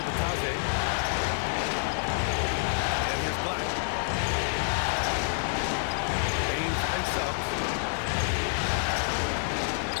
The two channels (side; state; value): right; silent; 59 dB below the other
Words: Batase. And here's Black. Baines and Suggs.